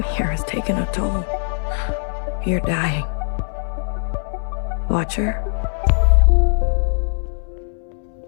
here has taken a toll. You're dying. Watcher?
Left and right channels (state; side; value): silent; right; digital silence